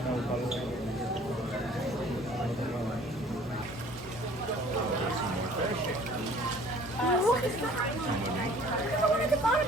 Look at that. There's one at the bottom.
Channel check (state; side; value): normal; both; correlation 0.52